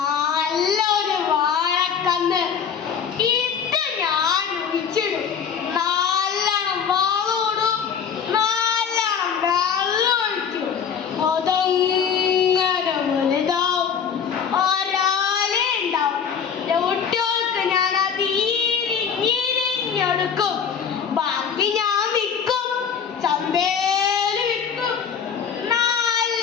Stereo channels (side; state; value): right; quieter; 7.2 dB